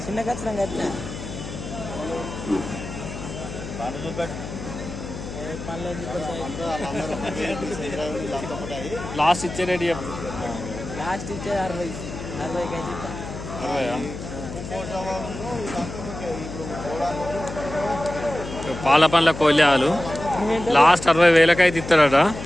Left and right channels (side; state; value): left; noise; hum, 9 dB below the sound